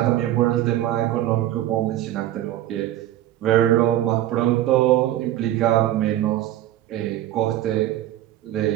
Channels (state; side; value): quieter; left; 13.3 dB